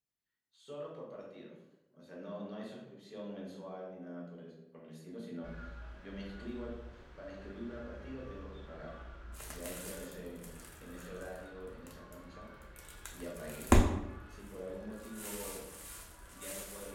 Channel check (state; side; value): identical; both; correlation 1.00